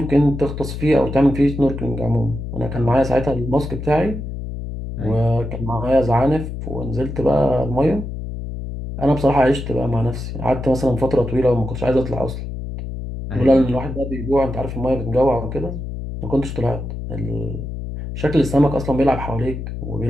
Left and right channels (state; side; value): noise; left; hum, 7 dB below the sound